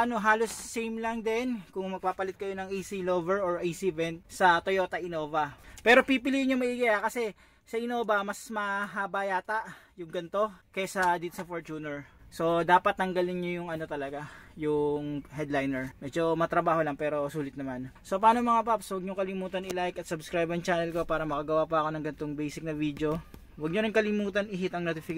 same lang din kung magpapalit kayo ng AC lover or AC vent sa Toyota Innova. Pero pipiliin nyo maigi kasi sa Innova mas mahaba yata yung ganito kaysa dito sa Fortuner. So dapat tanggalin nyo yung talaga, yung headliner. Medyo matrabaho lang pero sulit naman. So paano mga paps, huwag nyo kalimutan i-like at subscribe ang channel ko para makagawa pa ako ng ganitong basic na video. Huwag nyo rin kalimutan i-hit ang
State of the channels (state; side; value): identical; both; correlation 1.00